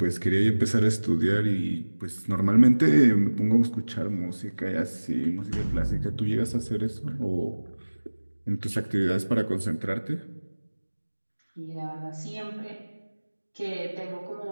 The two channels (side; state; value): both; inverted; correlation -1.00